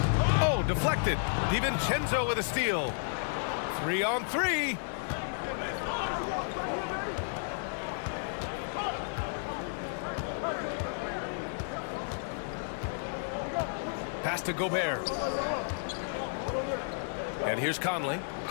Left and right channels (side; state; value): right; silent; 56 dB below the other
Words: Oh, deflected. DiVincenzo with a steal. 3 on 3. Pass to Gobert. And here's Conley.